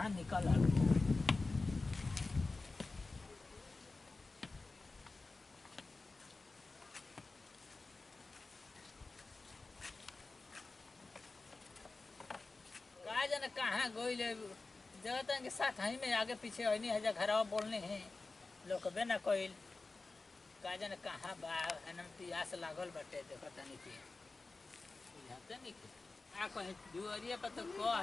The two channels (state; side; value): quieter; right; 3.6 dB